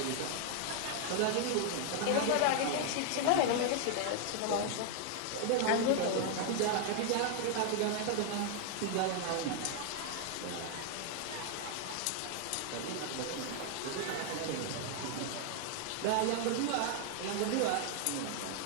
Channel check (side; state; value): both; different; correlation 0.00